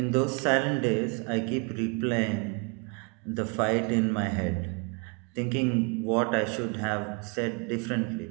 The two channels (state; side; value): quieter; left; 33.2 dB